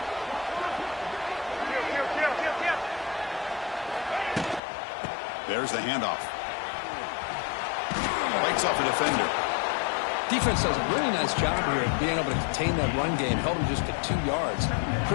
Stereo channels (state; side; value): drops out; right; at 4.6 s